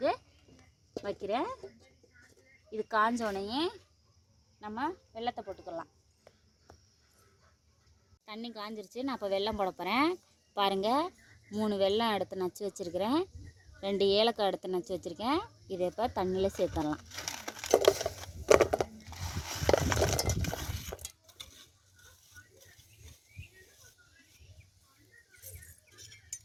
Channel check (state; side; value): identical; both; correlation 1.00